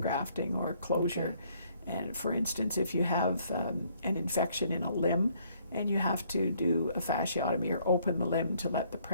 or closure. And for instance, if you have an infection in a limb and you have to do a fasciotomy or open the limb to let the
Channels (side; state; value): both; inverted; correlation -0.65